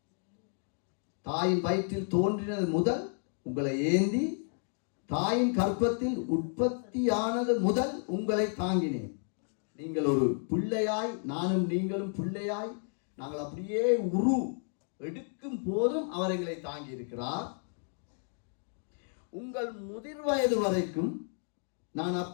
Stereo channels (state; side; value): silent; right; 56 dB below the other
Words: தாயின் வயிற்றில் தோன்றினது முதல் உங்களை ஏந்தி, தாயின் கர்ப்பத்தில் உற்பத்தியானது முதல் உங்களை தாங்கினேன். நீங்கள் ஒரு பிள்ளையாய், நானும் நீங்களும் பிள்ளையாய், நாங்கள் அப்படியே உரு எடுக்கும் போதும் அவர் எங்களை தாங்கி இருக்கிறார். உங்கள் முதிர் வயது வரைக்கும் நான்